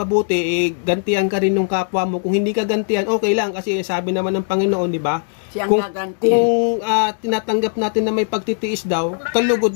gantihan ka rin ng kapwa mo. Kung hindi ka gantihan, okay lang. Kasi sabi naman ng Panginoon, di ba? Siyang Kung gaganti. tinatanggap natin na may pagtitiis daw,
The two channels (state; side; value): silent; right; 66 dB below the other